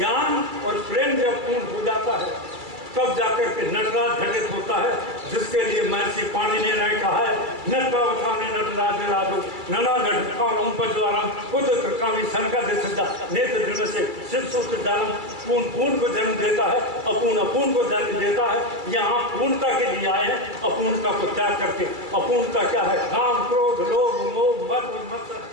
और प्रेम जब पूर्ण हो जाता है, तब जाकर के नटराज घटित होता है, जिसके लिए महर्षि पाणिनि ने कहा है, नटरावथाने नटराज राजो नना घटकाम उपज्वारम उद्रकामी शंका दे सिद्धा नेत्र दृढ़ से शिव सूत्र जालम। पूर्ण पूर्ण को जन्म देता है, अपूर्ण अपूर्ण को जन्म देता है। यहाँ पूर्णता के लिए आए हैं, अपूर्णता को त्याग करके। अपूर्णता क्या है? काम, क्रोध, लोभ, मोह, मद, मत्सर।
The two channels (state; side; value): late; left; 2.3 ms